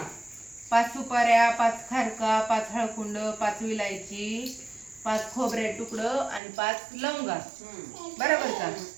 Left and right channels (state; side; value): drops out; left; at 6.4 s